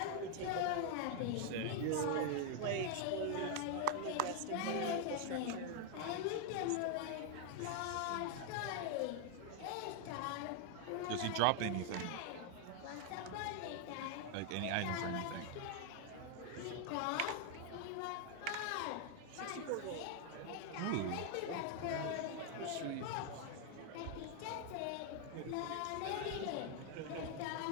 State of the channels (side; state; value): both; different; correlation 0.00